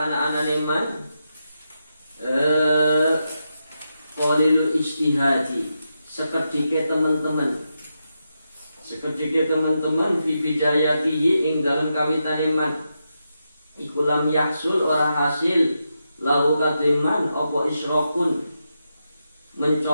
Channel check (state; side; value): inverted; both; correlation -0.86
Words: anane man qalilul ijtihadi sekedike teman-teman fi bidayatihi ing dalam kawitane man iku lam yahsul ora hasil lahu kadiman apa isyraqun